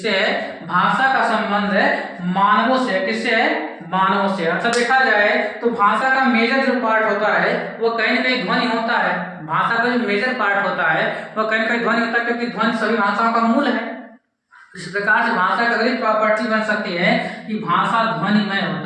है? भाषा का संबंध है मानवों से। किससे है? मानवों से। अच्छा देखा जाए तो भाषा का मेजर जो पार्ट होता है वह कहीं ना कहीं ध्वनि होता है। भाषा का जो मेजर पार्ट होता है वह कहीं ना कहीं ध्वनि होता है, क्योंकि ध्वनि सभी भाषाओं का मूल है। इस प्रकार से भाषा की अगली प्रॉपर्टी बन सकती है कि भाषा ध्वनिमय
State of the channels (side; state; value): both; identical; correlation 1.00